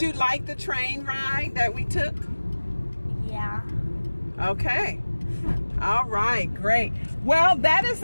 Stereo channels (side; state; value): both; inverted; correlation -1.00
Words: like the train ride that we took? Yeah. Okay. All right, great. Well, that is